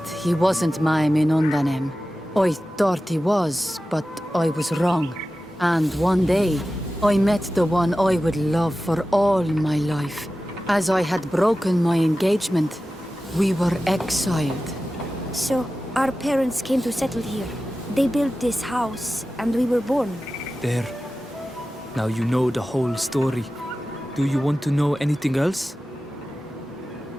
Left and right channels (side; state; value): both; normal; correlation 0.94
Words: he wasn't my Minundanem. I thought he was, but I was wrong. And one day, I met the one I would love for all my life. As I had broken my engagement, we were exiled. So, our parents came to settle here. They built this house, and we were born. There. Now you know the whole story. Do you want to know anything else?